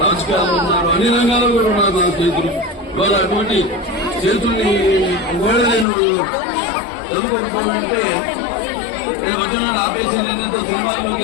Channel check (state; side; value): drops out; right; at 5.9 s